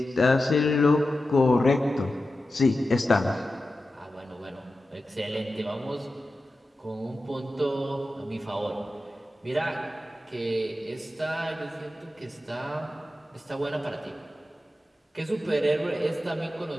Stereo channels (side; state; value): both; normal; correlation 0.92